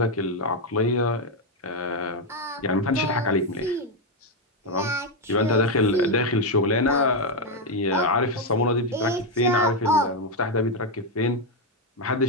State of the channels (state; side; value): normal; both; correlation 0.04